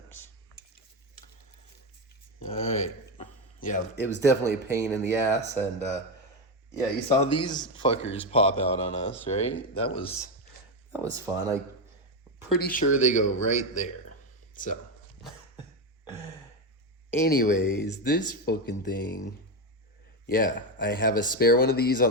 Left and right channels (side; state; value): both; normal; correlation 0.11